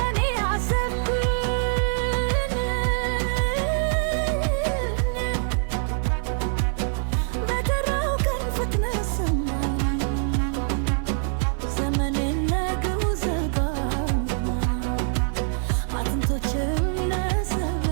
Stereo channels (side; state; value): left; silent; 60 dB below the other